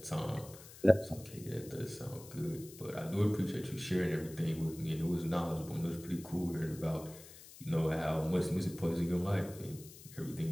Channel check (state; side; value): noise; left; hiss, 18 dB below the sound